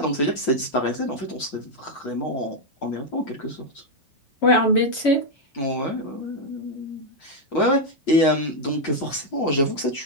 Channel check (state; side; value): late; right; 7.2 ms